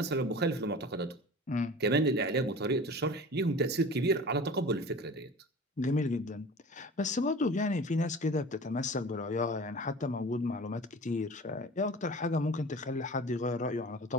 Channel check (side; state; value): both; normal; correlation 0.39